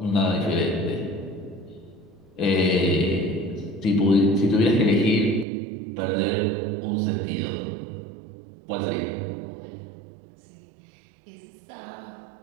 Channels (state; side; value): drops out; left; at 5.5 s